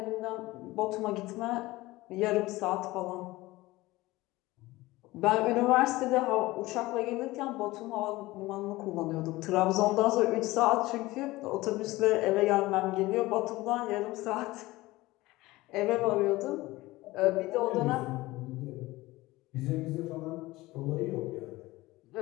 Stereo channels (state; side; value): quieter; right; 19.3 dB